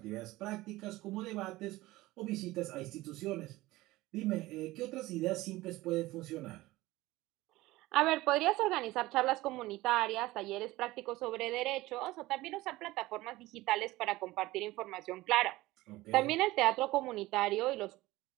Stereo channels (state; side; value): quieter; left; 18.6 dB